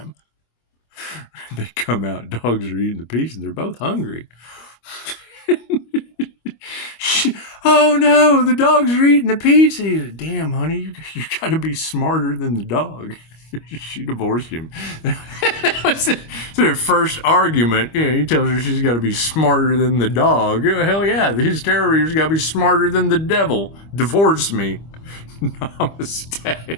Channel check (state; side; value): late; right; 25 ms